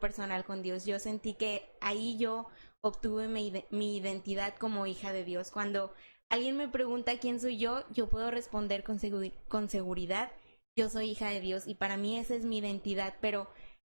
con Dios. Yo sentí que ahí yo obtuve mi identidad como hija de Dios. Cuando alguien me pregunta quién soy yo puedo responder con seguridad, yo soy hija de Dios y para mí esa es mi identidad, pero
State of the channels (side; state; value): both; inverted; correlation -1.00